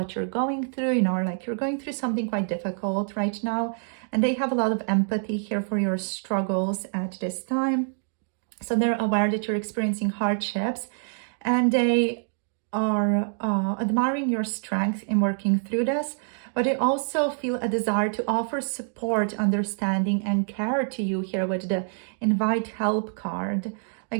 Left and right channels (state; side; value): silent; left; 61 dB below the other